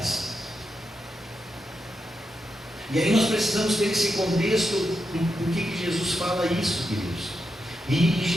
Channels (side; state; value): both; normal; correlation 0.86